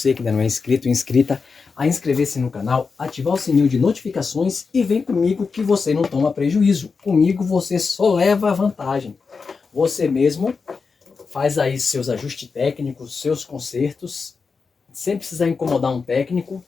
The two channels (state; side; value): quieter; right; 4.9 dB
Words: que ainda não é inscrito ou inscrita a inscrever-se no canal, ativar o sininho de notificações e vem comigo que você não toma prejuízo. Comigo você só leva vantagem. Você mesmo faz aí seus ajustes técnicos, seus consertos, sem precisar incomodar um técnico,